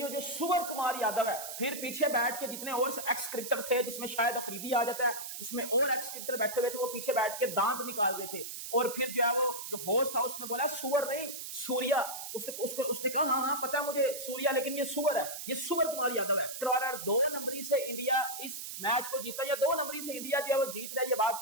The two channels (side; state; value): right; noise; hiss, 8 dB below the sound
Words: जो सूर्य कुमार यादव है, फिर पीछे बैठ के जितने और एक्स क्रिकेटर थे, जिसमें शायद अफरीदी आ जाता है, जिसमें और एक्स क्रिकेटर बैठे हुए थे, वो पीछे बैठ के दांत निकाल रहे थे। और फिर जो है वो जो होस्ट था उसने बोला सूअर नहीं सूर्या। उसने कहा हाँ पता है मुझे सूर्या, लेकिन ये सूअर है, ये सूर्य कुमार यादव है। 2 नंबरी से इंडिया इस मैच को जीता, या 2 नंबरी से इंडिया जो है वो जीत रहा है। ये बात